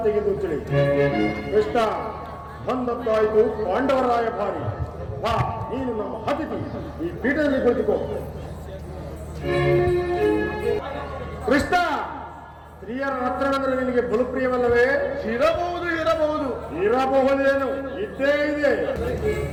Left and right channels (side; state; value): both; identical; correlation 1.00